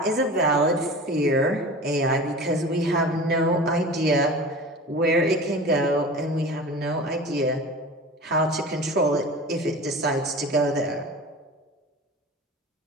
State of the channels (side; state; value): both; normal; correlation 0.36